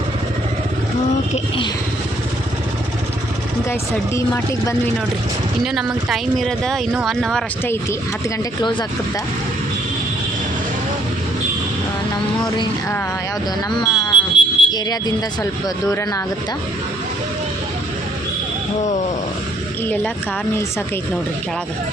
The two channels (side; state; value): both; normal; correlation 0.66